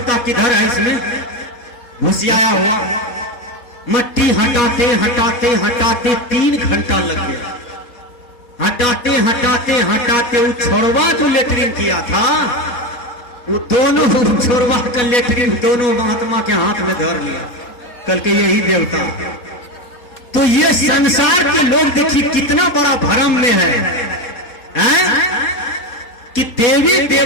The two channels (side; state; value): right; late; 4.1 ms